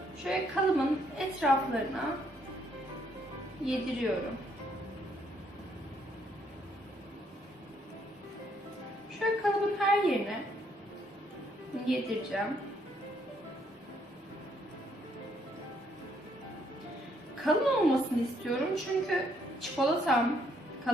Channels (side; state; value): both; normal; correlation 0.70